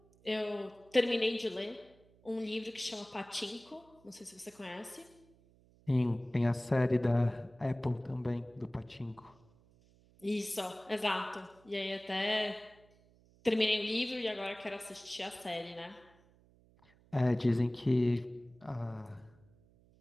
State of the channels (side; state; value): right; noise; hum, 29 dB below the sound